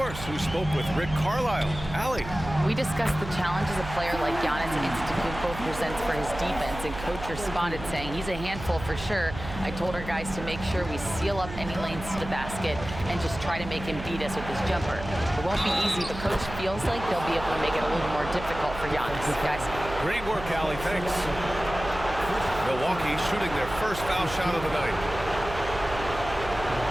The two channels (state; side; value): noise; right; hum, 11 dB below the sound